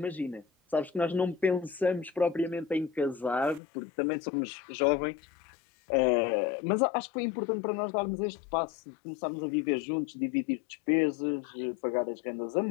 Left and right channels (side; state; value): right; drops out; at 3.6 s